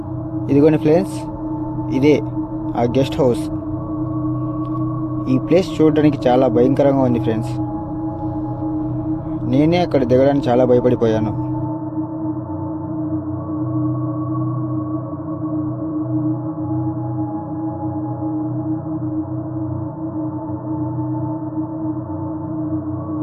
ఇదిగోండి ఫ్రెండ్స్, ఇదే ఆ గెస్ట్ హౌస్. ఈ ప్లేస్ చూడడానికి చాలా భయంకరంగా ఉంది ఫ్రెండ్స్. నేనే అక్కడ దిగడానికి చాలా భయపడిపోయాను.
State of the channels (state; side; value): identical; both; correlation 1.00